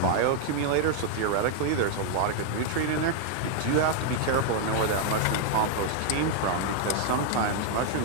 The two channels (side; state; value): both; different; correlation 0.00